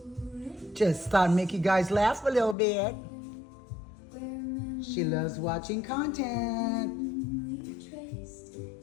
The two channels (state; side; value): drops out; right; at 2.6 s